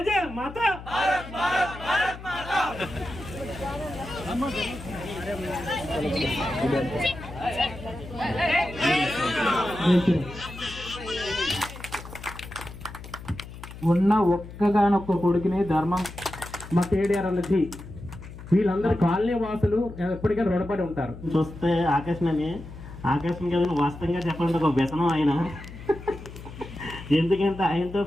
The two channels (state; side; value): noise; left; hum, 14 dB below the sound